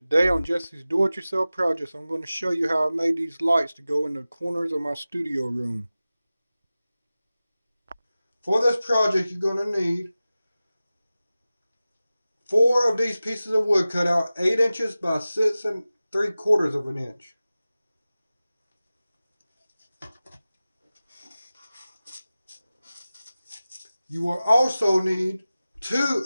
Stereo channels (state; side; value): inverted; both; correlation -0.96